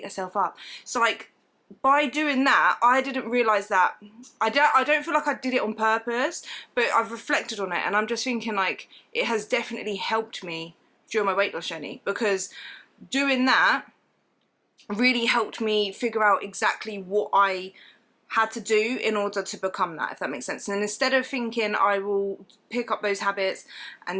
herself up. So like, by doing that, I didn't realise that, I don't feel like I did it on purpose, but I've reflected on it and I'm just thinking like, it has definitely helped me during my weight loss journey, because doing that really helped me figure out exactly what I had to do in order to become that, if that makes sense. And instead of thinking I will pick up those habits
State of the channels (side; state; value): both; identical; correlation 1.00